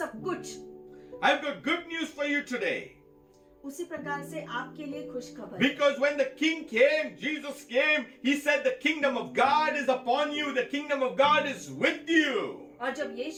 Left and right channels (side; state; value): both; identical; correlation 1.00